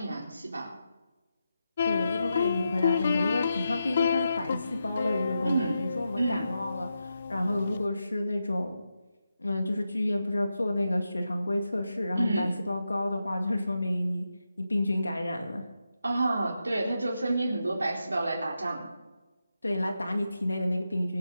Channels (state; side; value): inverted; both; correlation -0.88